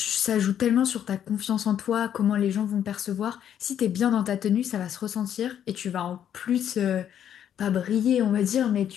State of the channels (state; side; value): quieter; right; 9.7 dB